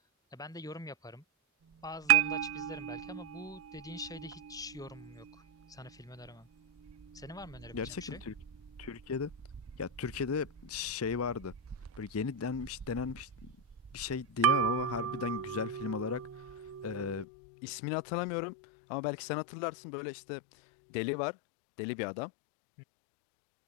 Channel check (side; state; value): right; drops out; at 17.2 s